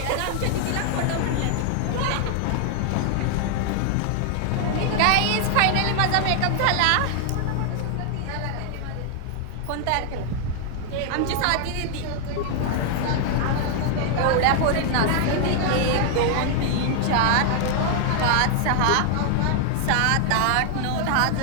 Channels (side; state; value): both; different; correlation 0.00